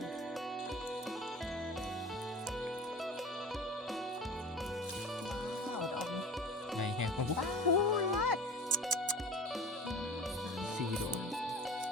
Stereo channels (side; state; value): both; normal; correlation 0.37